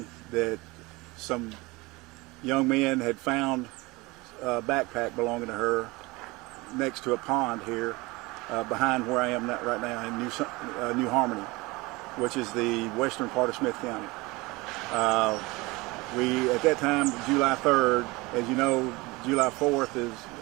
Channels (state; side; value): quieter; left; 23.2 dB